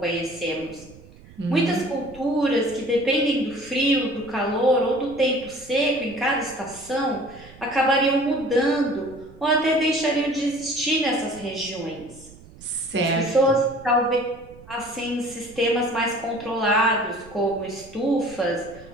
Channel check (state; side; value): noise; right; rumble, 21 dB below the sound